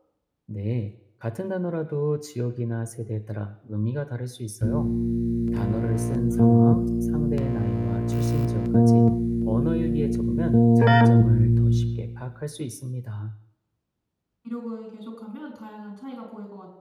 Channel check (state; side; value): identical; both; correlation 1.00